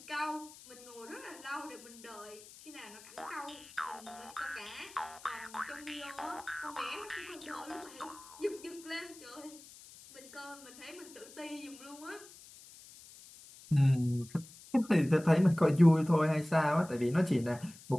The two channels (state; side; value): noise; left; hiss, 19 dB below the sound